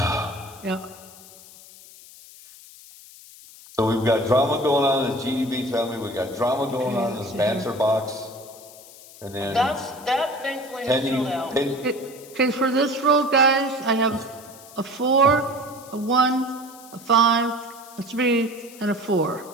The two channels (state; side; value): noise; left; hiss, 20 dB below the sound